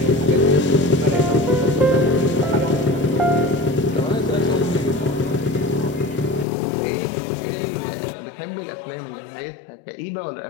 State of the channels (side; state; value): right; drops out; at 6.5 s